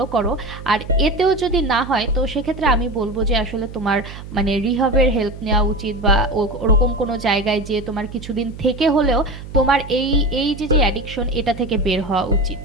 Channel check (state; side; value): noise; right; hum, 13 dB below the sound